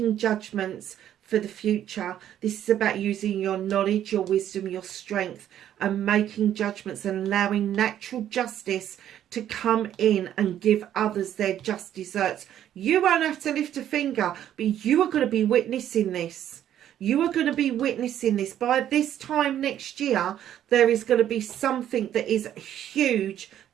judgments for the future. This is about using your knowledge, your wisdom, your strength, and making judgments and allowing natural justice to come in and give others their just deserts. You won't have to lift a finger, but you are going to be witnessing this. You are going to be witnessing this. By this time next year, there is going to be something that is huge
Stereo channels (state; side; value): quieter; left; 11.0 dB